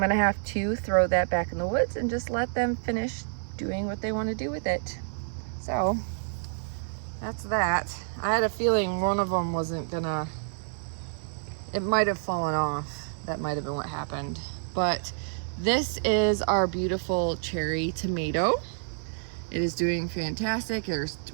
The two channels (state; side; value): silent; left; 59 dB below the other